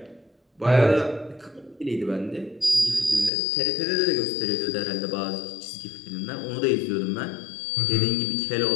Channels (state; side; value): drops out; right; at 3.3 s